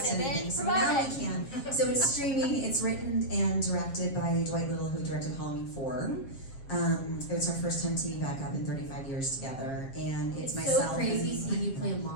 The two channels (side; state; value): right; late; 7.4 ms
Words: it, anything. bitch. So Promote now it. we can. So it's streaming. It's written and directed by Dwight Little, who directed Halloween 4. It was our first time teaming back up in 35 years together, and it's myself. so crazy and seeing you play a